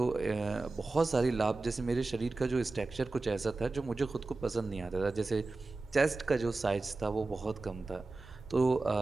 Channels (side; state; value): left; quieter; 3.4 dB